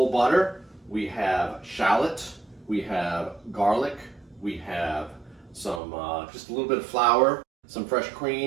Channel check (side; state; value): left; drops out; at 5.8 s